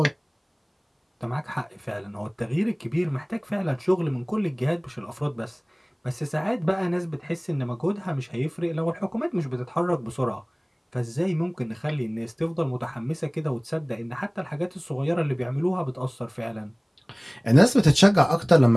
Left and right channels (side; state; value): both; identical; correlation 1.00